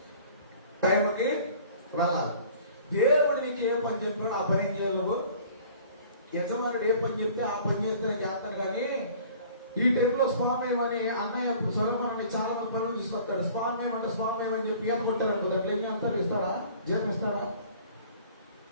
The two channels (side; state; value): both; inverted; correlation -0.50